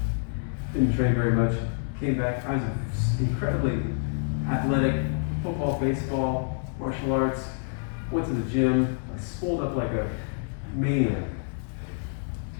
Didn't train very much. Came back. I was incredibly athletic. Football, baseball, martial arts. Went to the gym. I swolled up like a maniac.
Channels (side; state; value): right; silent; digital silence